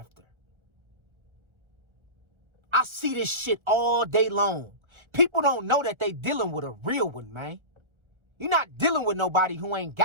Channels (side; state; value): left; late; 1.4 ms